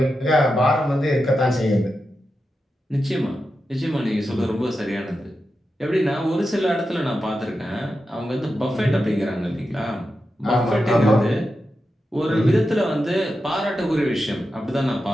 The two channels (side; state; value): both; normal; correlation 0.90